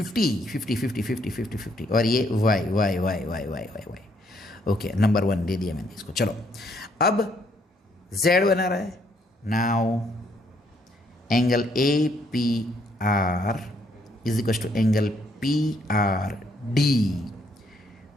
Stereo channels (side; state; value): both; normal; correlation 0.70